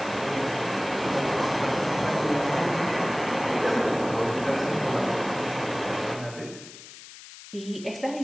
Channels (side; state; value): left; noise; hiss, 16 dB below the sound